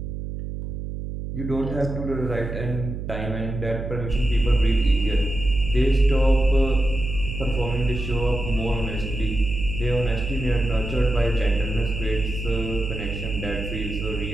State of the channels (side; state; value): right; noise; hum, 6 dB below the sound